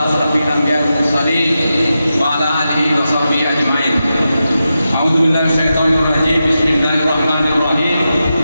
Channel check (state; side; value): inverted; both; correlation -0.89